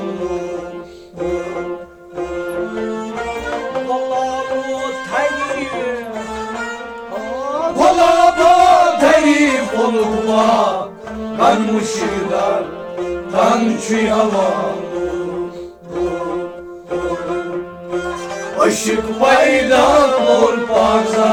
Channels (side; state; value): both; identical; correlation 1.00